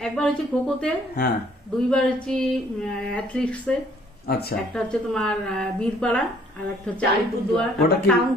একবার হচ্ছে খোখোতে, হ্যাঁ 2 বার হচ্ছে অ্যাথলেটিক্সে। আচ্ছা, একটা হচ্ছে তোমার বীরপাড়া, আর একটা হচ্ছে আলিপুরদুয়ার, ওটা কি?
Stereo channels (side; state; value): both; normal; correlation 0.61